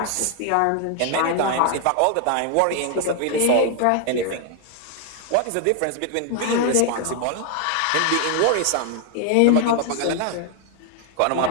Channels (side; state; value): both; different; correlation 0.00